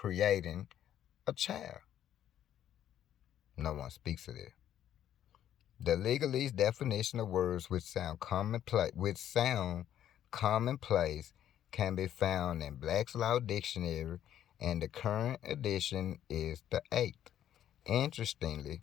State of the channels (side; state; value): right; quieter; 10.9 dB